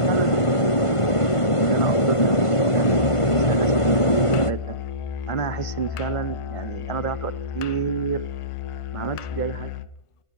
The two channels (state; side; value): late; right; 1.5 ms